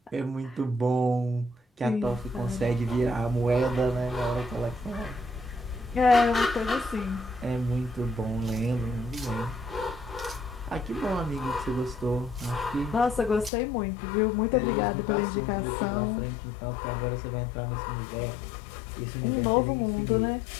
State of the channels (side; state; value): right; drops out; at 13.5 s